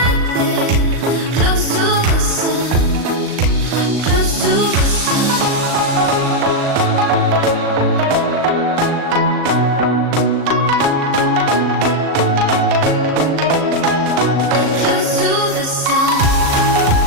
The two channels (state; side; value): late; left; 38 ms